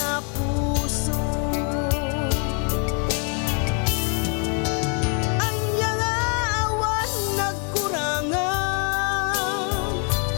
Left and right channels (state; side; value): quieter; right; 38.8 dB